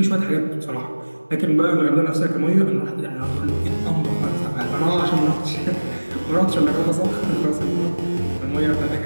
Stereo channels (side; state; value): both; inverted; correlation -1.00